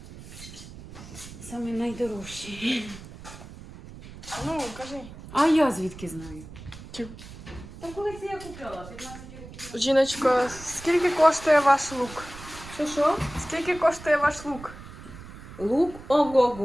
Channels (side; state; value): right; noise; rumble, 15 dB below the sound